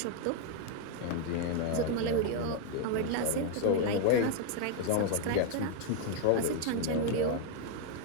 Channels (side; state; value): both; different; correlation 0.00